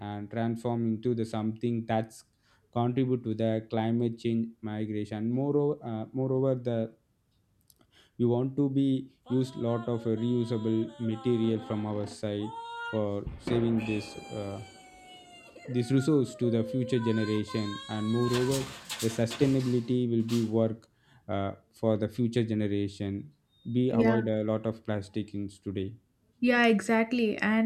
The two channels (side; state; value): both; identical; correlation 1.00